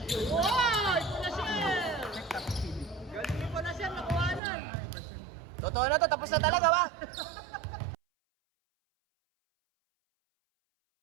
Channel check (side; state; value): left; drops out; at 4.4 s